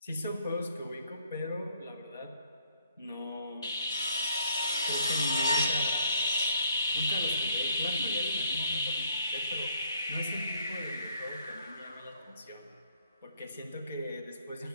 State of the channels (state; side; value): inverted; both; correlation -0.65